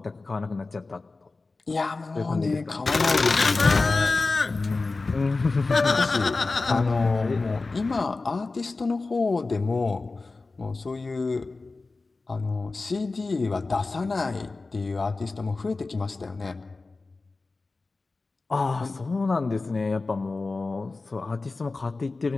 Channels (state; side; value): quieter; right; 3.7 dB